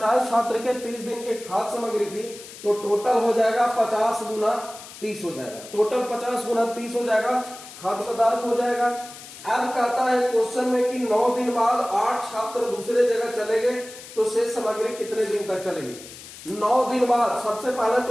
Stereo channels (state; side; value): noise; left; hiss, 16 dB below the sound